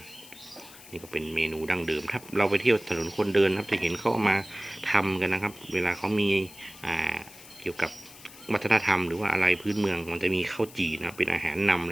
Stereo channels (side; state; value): left; noise; hiss, 19 dB below the sound